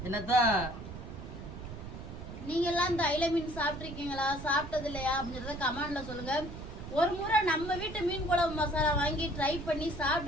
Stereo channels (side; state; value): right; noise; rumble, 11 dB below the sound